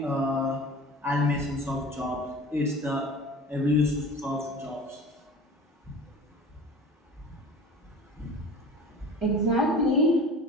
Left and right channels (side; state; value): both; normal; correlation 0.39